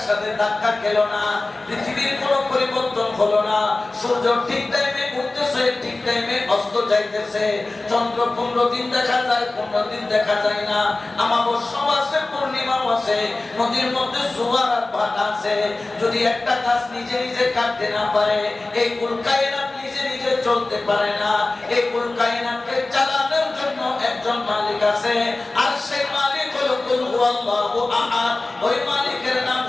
সাথে ধাক্কা খেলো না, পৃথিবীর কোনো পরিবর্তন হলো না। সূর্য ঠিক টাইমে উঠতেছে, ঠিক টাইমে অস্ত যাইতেছে। চন্দ্র 15 দিন দেখা যায়, 15 দিন দেখা যায় না। অমাবস্যাও আছে, পূর্ণিমাও আছে, নদীর মধ্যে জোয়ার আর ভাটা আছে। যদি একটা গাছ নিজে নিজে কাটতে না পারে, এই কুল কায়নাত নিজে নিজে চলতে পারে না। এই কুল কায়নাতকে চালানোর জন্য একজন মালিক আছে, আর সেই মালিক হলো কুল হুয়াল্লাহু আহাদ। ওই মালিকের নাম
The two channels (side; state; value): right; quieter; 3.1 dB